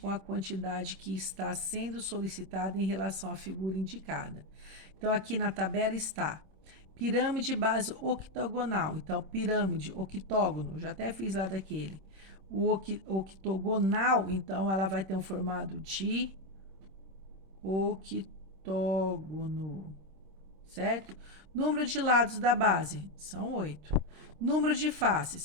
a quantidade que está sendo solicitada em relação à figura indicada. Então, aqui na tabela está pirâmide base octogonal. Então, pirâmide, octógono, já até fiz lá daquele. O octogonal, então, ela vai ter um formato de octógono, certo? Número de lados da base são 8. Número de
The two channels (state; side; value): late; left; 26 ms